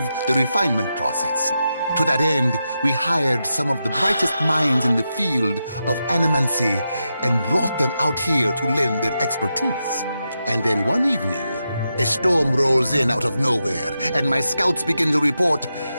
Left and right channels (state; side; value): inverted; both; correlation -0.87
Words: the refinement process. To that end, we hired some of the brightest minds in the field of animancy and brought them out here to lend their expertise. And then one evening, a storm rolls in out of nowhere, and my scouts begin to report